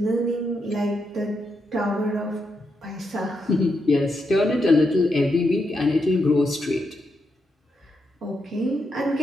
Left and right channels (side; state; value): both; normal; correlation 0.83